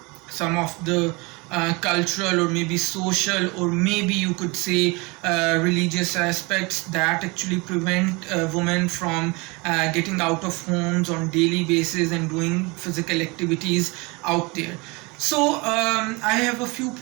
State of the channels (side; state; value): left; quieter; 26.8 dB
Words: some of the cultural or maybe social or maybe you could say religious aspects that actually prevent women from getting out of homes on daily basis and doing physical activities out there. So I have a few